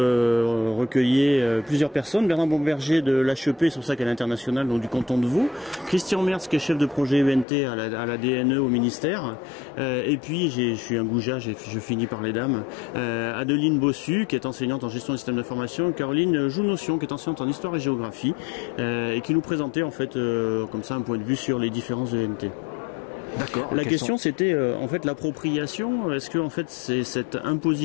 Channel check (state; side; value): drops out; right; at 7.5 s